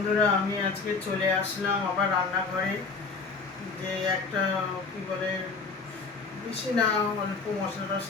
আমি আজকে চলে আসলাম আবার রান্নাঘরে। যে একটা কি বলে, বেশি না, অল্প মশলা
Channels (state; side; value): quieter; right; 4.5 dB